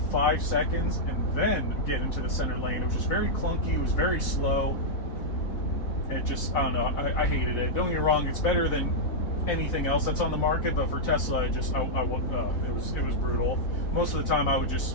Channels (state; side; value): late; right; 3.6 ms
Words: seconds, and then get into the center lane. It was just very clunky. It was very slow. It just, I don't know, I hated it. Don't get me wrong, it's better than anything else that's on the market, but for Tesla, it was brutal. Most of the time I would